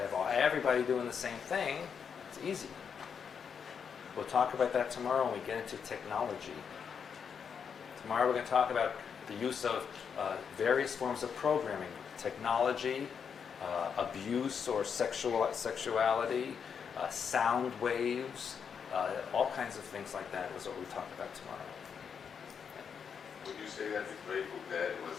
have everybody doing the same thing, it's easy. We'll talk about that tomorrow when we get into technology. Tomorrow we're going to talk about the use of various forms of programming, technology, abuse or sexuality, sound waves, all kinds of things like that is what we talk about tomorrow. Would you say that the Grateful Dead was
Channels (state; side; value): quieter; right; 6.8 dB